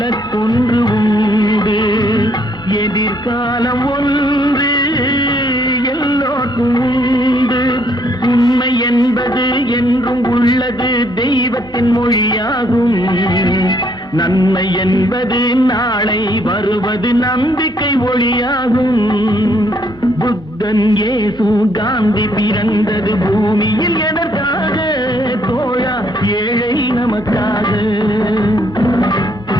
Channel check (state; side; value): normal; both; correlation 0.69